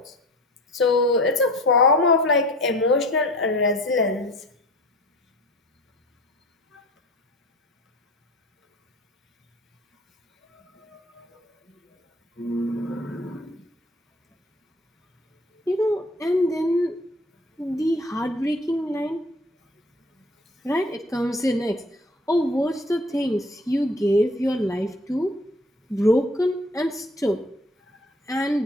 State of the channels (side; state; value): both; normal; correlation 0.45